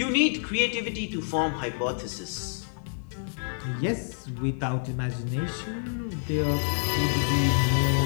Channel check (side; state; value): right; silent; 55 dB below the other